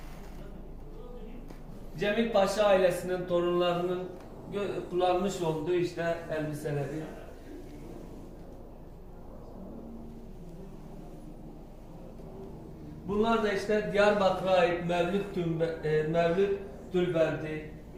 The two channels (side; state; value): both; identical; correlation 1.00